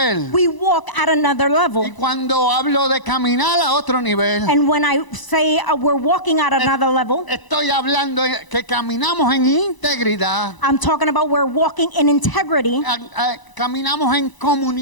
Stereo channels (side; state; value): right; late; 1.0 ms